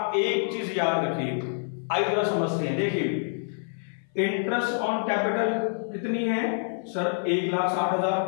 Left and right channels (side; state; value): right; silent; 57 dB below the other